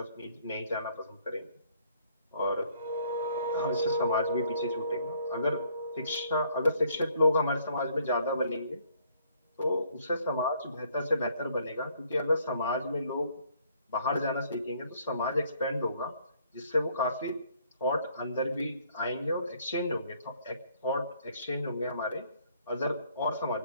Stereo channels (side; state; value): both; inverted; correlation -0.64